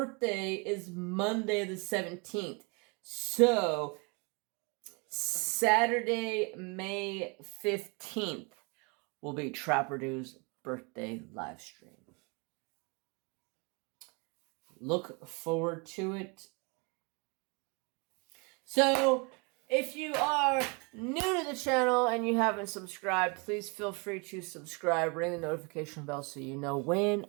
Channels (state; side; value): quieter; left; 31.4 dB